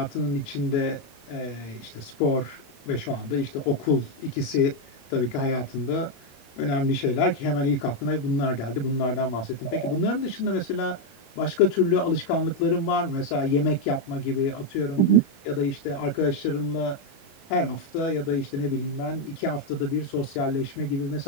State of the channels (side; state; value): right; late; 22 ms